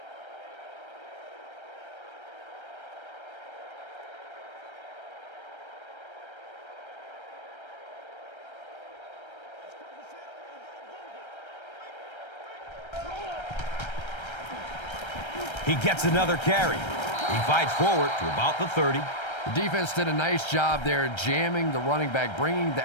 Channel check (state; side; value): late; right; 1.3 ms